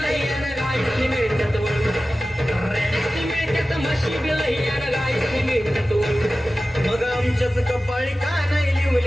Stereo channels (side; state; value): both; normal; correlation 0.95